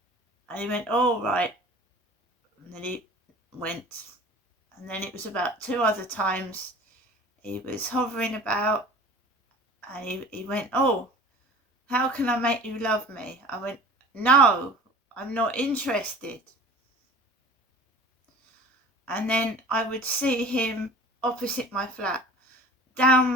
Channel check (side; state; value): both; normal; correlation 0.42